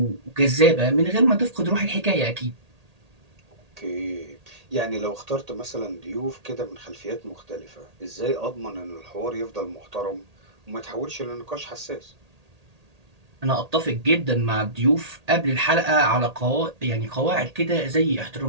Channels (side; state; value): left; late; 1.8 ms